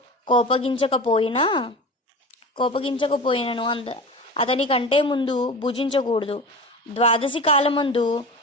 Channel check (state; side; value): normal; both; correlation 0.32